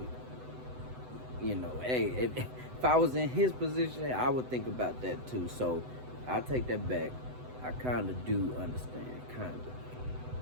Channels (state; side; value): late; left; 7.9 ms